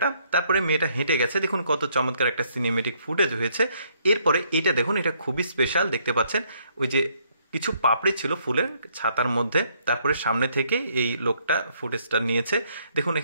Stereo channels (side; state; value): both; inverted; correlation -0.69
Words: তারপরে মেয়েটা হেঁটে গেছে। দেখুন কত চমৎকার একটা সিনেমেটিক ফুটেজ হয়েছে। এরপরে এটা দেখুন, এটা খুবই স্পেশাল। দেখতে পাচ্ছেন ওই যে কিছু পাপড়ি ছিল ফুলের ছাতার মধ্যে। তারপরে সামনে থেকে এই লোকটা ফুটেজটা নিয়েছে। দেখুন